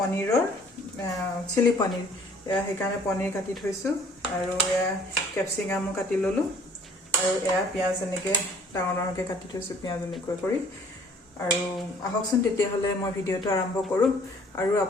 চিলি পনীৰ এয়া হেকানে পনীৰ কাটি থৈছো আৰু এয়া ক্যাপসিকাম কাটি ললো আৰু এয়া পিয়াজ এনেকে ডাঙৰকে কাটি থৈছো পিয়াজ এনেকৈ কৰি আৰু আহকচোন তেতিয়া হলে মই ভিডিওটো আৰম্ভ কৰো আৰু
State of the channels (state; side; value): normal; both; correlation 0.55